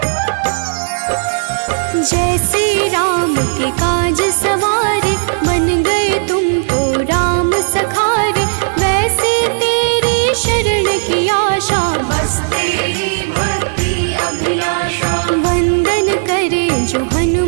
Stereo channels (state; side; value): silent; left; digital silence